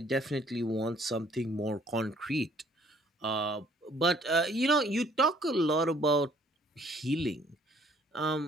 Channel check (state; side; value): normal; both; correlation 0.60